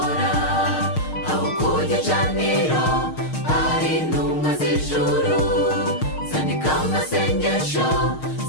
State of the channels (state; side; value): late; right; 6.5 ms